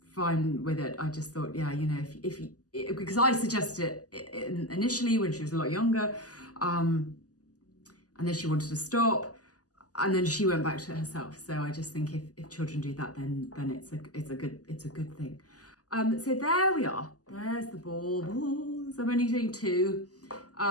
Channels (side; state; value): right; late; 0.67 ms